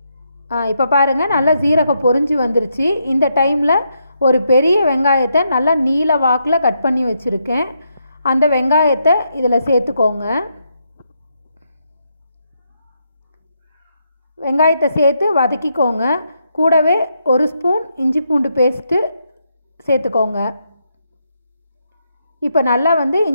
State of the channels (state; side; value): inverted; both; correlation -0.79